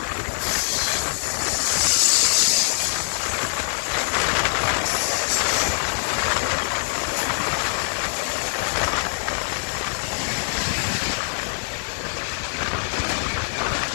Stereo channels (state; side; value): silent; right; 55 dB below the other